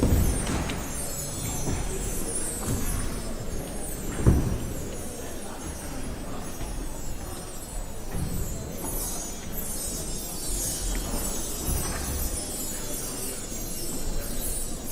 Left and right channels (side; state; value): both; identical; correlation 1.00